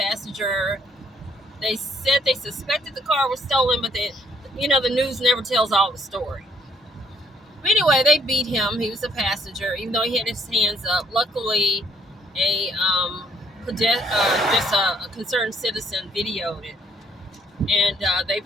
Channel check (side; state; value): both; normal; correlation 0.65